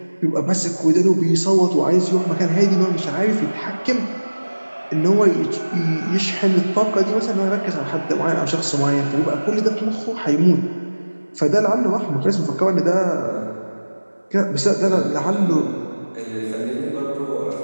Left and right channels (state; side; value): inverted; both; correlation -1.00